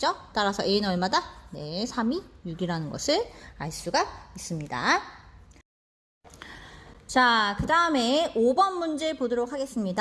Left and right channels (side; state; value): both; identical; correlation 1.00